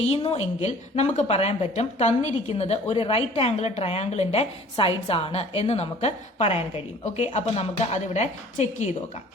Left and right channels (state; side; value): normal; both; correlation 0.50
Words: എങ്കിൽ നമുക്ക് പറയാൻ പറ്റും തന്നിരിക്കുന്നത് ഒരു റൈറ്റ് ആംഗിൾ ട്രയാംഗിളിന്റെ സൈഡ്സ് ആണ് എന്ന് നമുക്ക് പറയാൻ കഴിയും. ഓക്കെ, അപ്പൊ നമുക്ക് അതിവിടെ ചെക്ക് ചെയ്ത് നോക്കാം.